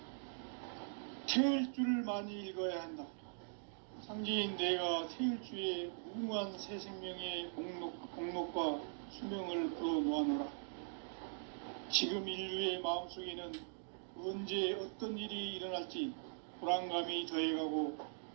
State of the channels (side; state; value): left; silent; digital silence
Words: 태을 줄을 많이 읽어야 한다. 상제인 내가 태을주의 무궁한 새 생명의 공목과 수명을 풀어놓아노라. 지금 인류의 마음속에는 언제 어떤 일이 일어날지 불안감이 더해가고